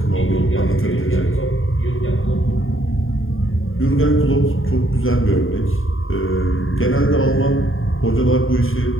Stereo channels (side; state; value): right; late; 0.59 ms